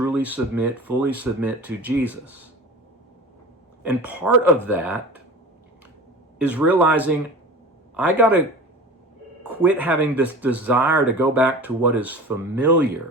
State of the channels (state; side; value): normal; both; correlation 0.36